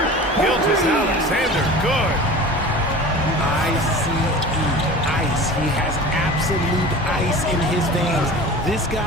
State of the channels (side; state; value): both; normal; correlation 0.38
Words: Gilgeous-Alexander, good. ICE, ice. He has absolute ice in his veins. This